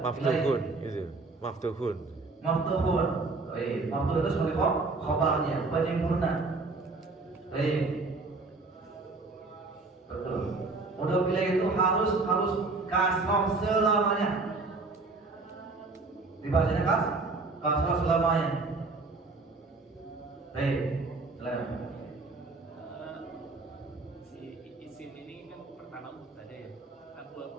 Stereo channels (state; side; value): quieter; left; 3.6 dB